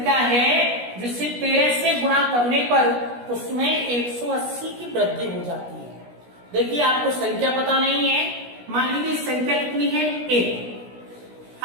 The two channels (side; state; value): left; late; 16 ms